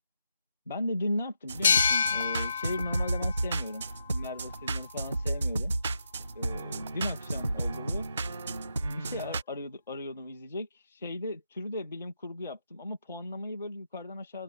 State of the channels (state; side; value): inverted; both; correlation -0.83